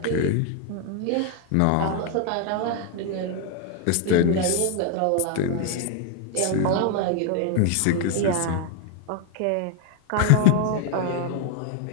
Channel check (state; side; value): different; both; correlation 0.01